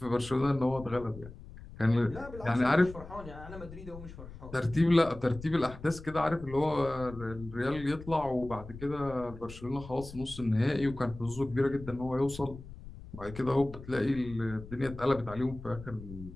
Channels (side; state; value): left; noise; rumble, 15 dB below the sound